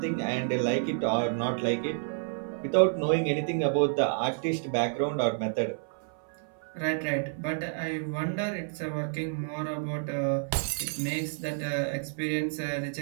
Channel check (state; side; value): silent; left; 58 dB below the other